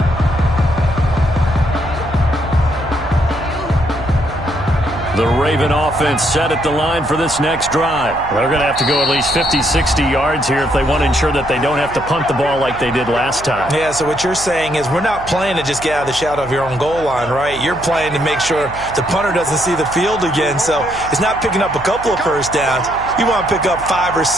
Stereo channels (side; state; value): right; noise; hum, 15 dB below the sound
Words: The Raven offense set at the line for this next drive. They're going to have to go at least 50, 60 yards here if they want to ensure that they don't have to punt the ball like they did last time. Yeah, so what you're saying is we're not playing to just get out of the shadow of your own goal line, right? You're playing to make sure the punter doesn't see the field again. So it's not picking up a couple of first downs. You want to pick up 5 or